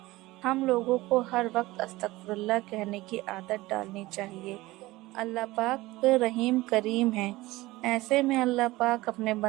ہم لوگوں کو ہر وقت استغفر اللہ کہنے کی عادت ڈالنی چاہیے۔ اللہ پاک رحیم کریم ہے، ایسے میں اللہ پاک اپنے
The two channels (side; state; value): left; quieter; 19.2 dB